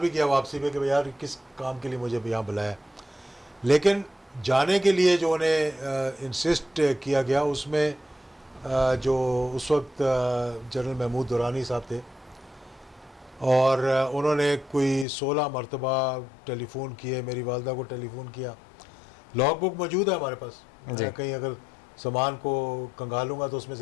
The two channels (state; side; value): drops out; right; at 15.1 s